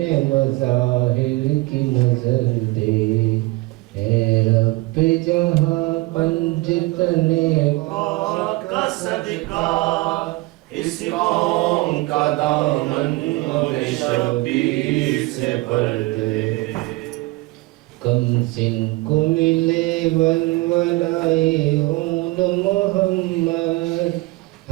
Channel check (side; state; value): left; quieter; 21.7 dB